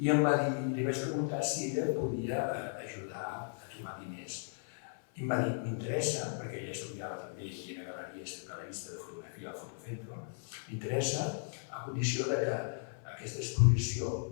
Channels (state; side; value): silent; right; 54 dB below the other